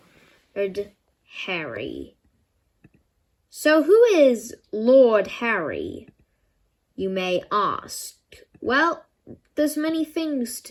Harry. So who is Lord Harry, you may ask? Well, there's many things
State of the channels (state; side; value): identical; both; correlation 1.00